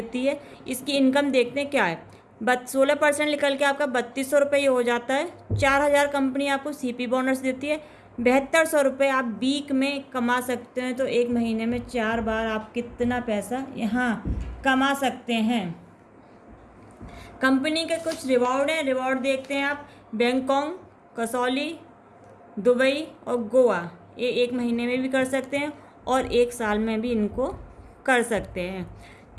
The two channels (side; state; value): both; identical; correlation 1.00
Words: है। इसकी इनकम देखते हैं क्या है। 16% निकल के आपका 3200 रुपये हो जाता है। 4,000 कंपनी आपको CP बोनस देती है। 7200 रुपये आप वीक में कमा सकते हैं। तो एक महीने में 4 बार आप कितना पैसा यहाँ कमा सकते हैं। कंपनी के कुछ रिवॉर्ड हैं, रिवॉर्ड देखते हैं आप। बैंकॉक, कसौली, दुबई और गोवा, ये एक महीने में भी कर सकते हैं और 1 साल में भी इनको कर सकते हैं।